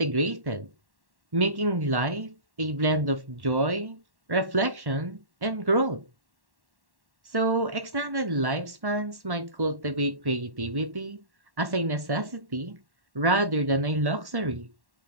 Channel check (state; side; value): late; left; 1.1 ms